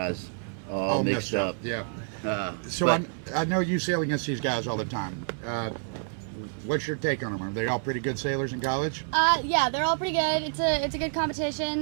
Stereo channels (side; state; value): left; silent; digital silence